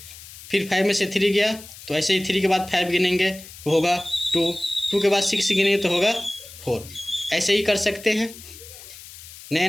फिर 5 में से 3 गया तो ऐसे ही 3 के बाद 5 गिनेंगे तो होगा 2, 2 के बाद 6 गिनेंगे तो होगा 4। ऐसे ही कर सकते हैं।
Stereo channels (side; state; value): left; noise; hiss, 17 dB below the sound